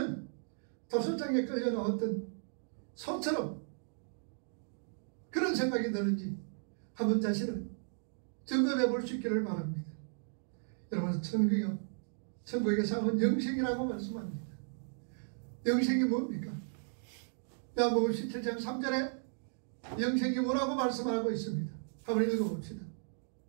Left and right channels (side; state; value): left; silent; digital silence